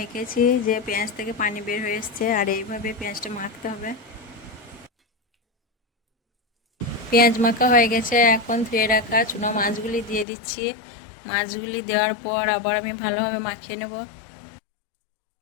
যে পেঁয়াজ থেকে পানি বের হয়ে এসছে, আর এইভাবে পেঁয়াজটা মাখতে হবে। পেঁয়াজ মাখা হয়ে গেছে, এখন ধুয়ে রাখা চুনো মাছগুলি দিয়ে দিচ্ছি। মাছগুলি দেওয়ার পর আবার আমি ভালোভাবে মাখিয়ে নেব।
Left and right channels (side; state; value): right; drops out; at 10.2 s